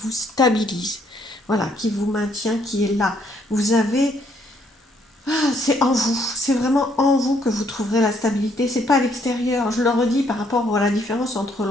vous stabilise. Voilà, qui vous maintient, qui est là. Vous avez... c'est en vous, c'est vraiment en vous que vous trouverez la stabilité, c'est pas à l'extérieur. Je le redis par rapport à la différence entre le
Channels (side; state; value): both; normal; correlation 0.68